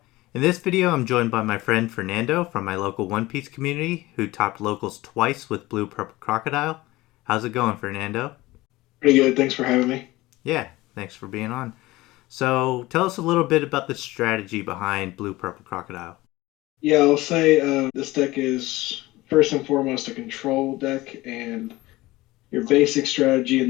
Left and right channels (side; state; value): right; quieter; 19.1 dB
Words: In this video I'm joined by my friend Fernando from my local One Piece community who topped locals twice with Blue Purple Crocodile. How's it going, Fernando? Pretty good. Thanks for having me. Yeah, thanks for being on. So tell us a little bit about the strategy behind Blue Purple Crocodile. Yeah, I'll say this deck is first and foremost a control deck, and your basic strategy in